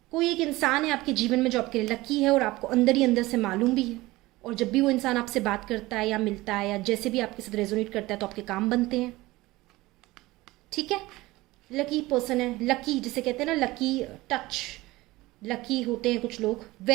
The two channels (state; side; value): quieter; left; 19.5 dB